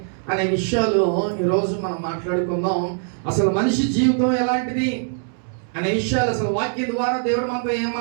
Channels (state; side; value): silent; left; 64 dB below the other